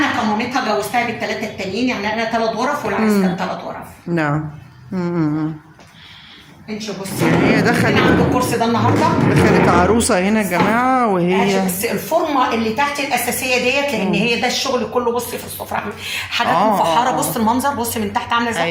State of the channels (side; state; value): both; identical; correlation 1.00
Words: كمامتها جوزتها بالثلاثه التانيين. يعني انا 3 غرف والعريس كان 3 غرف. نعم. انت بصي هي دخلت عند الكرسي ده النهارده. دخلت عروسه هنا يا جماعه. وهي بس الفورمه اللي تحت الاساسيه ديت لان هي ده الشغل كله. بصي في السفره حاجات مفحره. بصي المنظر. بصي من تحت عامله ازاي.